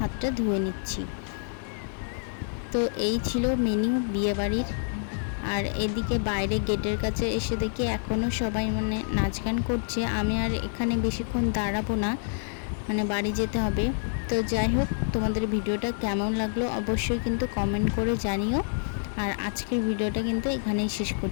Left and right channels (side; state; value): right; silent; digital silence